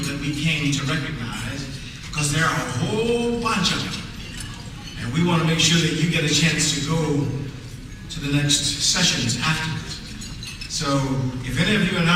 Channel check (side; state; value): both; identical; correlation 1.00